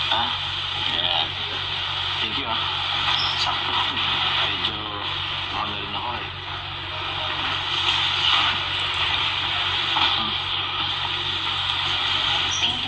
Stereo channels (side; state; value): both; identical; correlation 1.00